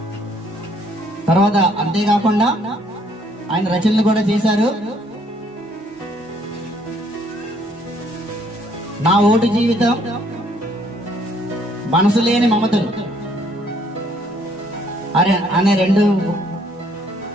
తర్వాత అంతేకాకుండా ఆయన రచనలు కూడా చేశారు. నా ఓటు జీవితం, మనసు లేని మమతలు అనే 2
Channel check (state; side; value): normal; both; correlation 0.65